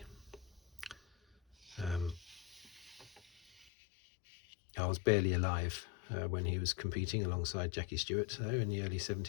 I was barely alive when he was competing alongside Jackie Stewart, though, in the early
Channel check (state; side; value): drops out; right; at 3.7 s